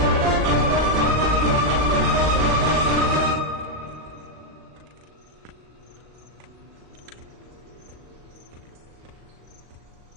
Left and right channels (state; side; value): late; left; 37 ms